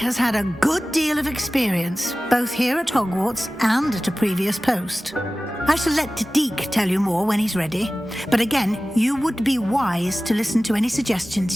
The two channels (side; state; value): both; normal; correlation 0.97